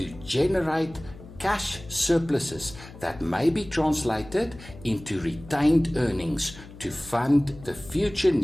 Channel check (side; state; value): left; noise; hum, 18 dB below the sound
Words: generate cash surpluses that may be translated into retained earnings to fund the future